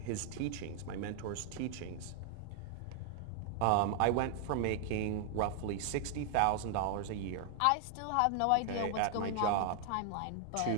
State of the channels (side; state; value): both; different; correlation 0.00